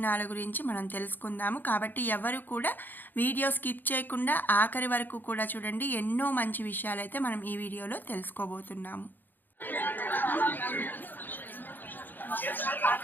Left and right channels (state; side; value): late; right; 0.089 ms